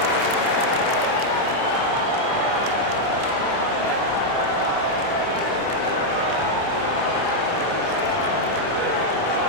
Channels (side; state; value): right; late; 28 ms